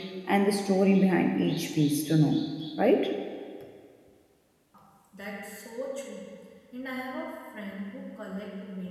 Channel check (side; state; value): both; identical; correlation 1.00